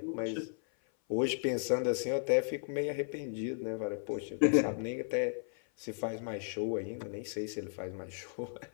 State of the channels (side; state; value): right; silent; 55 dB below the other